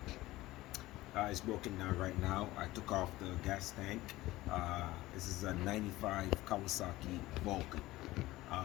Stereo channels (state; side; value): quieter; right; 17.7 dB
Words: it's broken down right now. I took off the gas tank. This is a 95 Kawasaki Vulcan